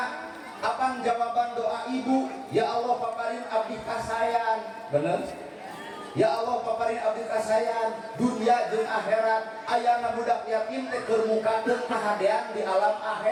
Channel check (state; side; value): identical; both; correlation 1.00